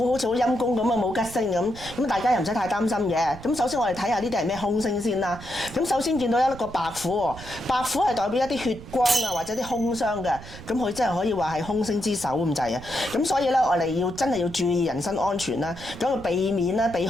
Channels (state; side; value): noise; right; rumble, 15 dB below the sound